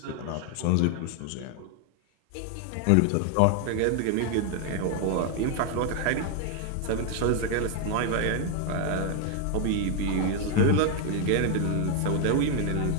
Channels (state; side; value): different; both; correlation 0.00